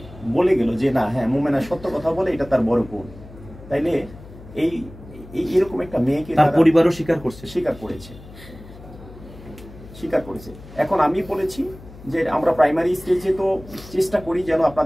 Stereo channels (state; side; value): noise; left; hum, 18 dB below the sound